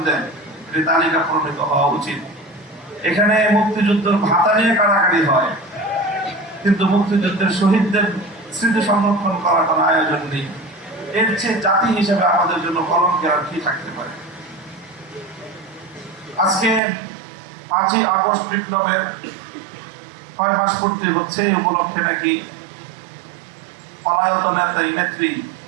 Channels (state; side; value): drops out; left; at 16.8 s